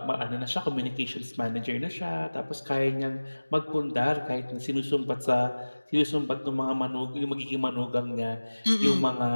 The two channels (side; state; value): both; inverted; correlation -1.00